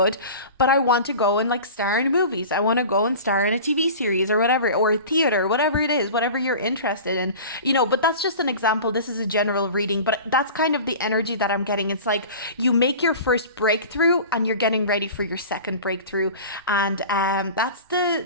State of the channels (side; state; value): both; inverted; correlation -0.37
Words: but I want to go and like star in movies. I want to go and star in a TV series or whatever, or theater, whatever it is, whatever you're interested in. But that's just an example. This is a general reading, but that's kind of the energy that I'm getting. It's like you make your first breakthrough and you're getting ready for your second breakthrough. And that's